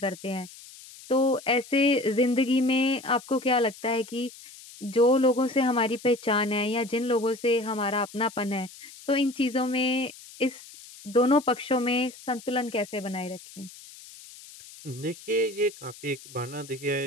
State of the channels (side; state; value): left; noise; hiss, 19 dB below the sound